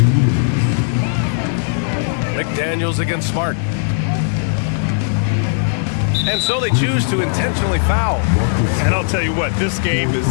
McDaniels against Smart. And so they choose to intentionally foul. And I'll tell you what, this game is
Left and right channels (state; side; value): silent; right; digital silence